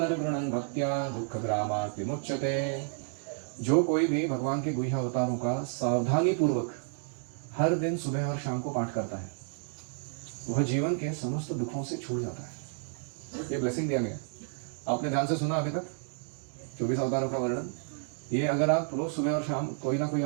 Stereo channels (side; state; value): left; silent; 57 dB below the other